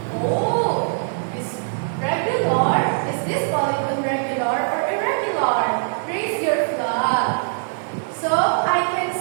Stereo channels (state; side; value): silent; left; digital silence